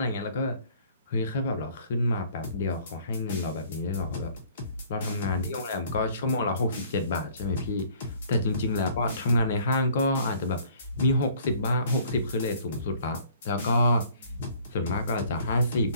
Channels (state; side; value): inverted; both; correlation -0.56